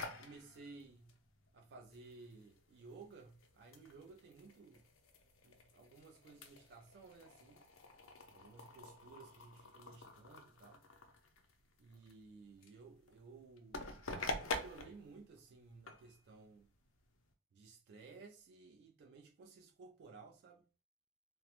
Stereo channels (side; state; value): both; normal; correlation -0.13